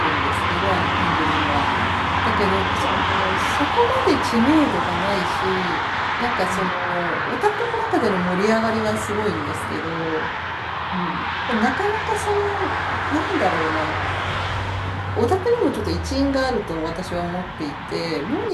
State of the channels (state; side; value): identical; both; correlation 1.00